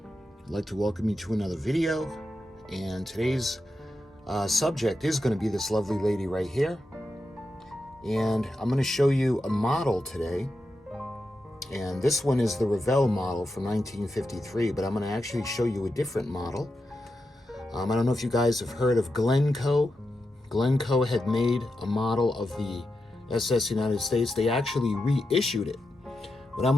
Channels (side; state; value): both; normal; correlation 0.88